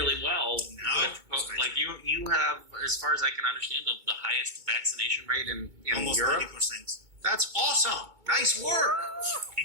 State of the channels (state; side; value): late; left; 2.2 ms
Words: well. No, like you have, as far as I can understand, the highest vaccination rate in almost Europe. 90%. That's awesome. Nice work.